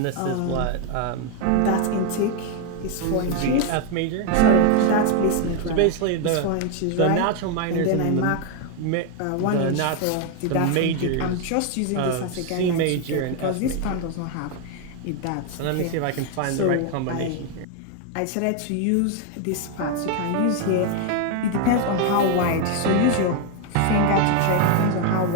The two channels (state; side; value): different; both; correlation 0.01